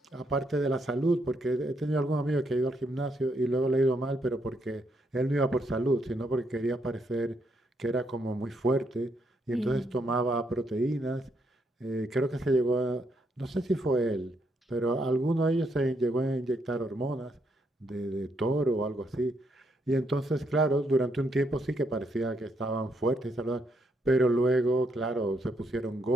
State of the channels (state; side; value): normal; both; correlation 0.76